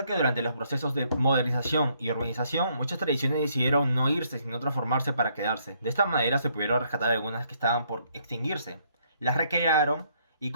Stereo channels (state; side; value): inverted; both; correlation -0.70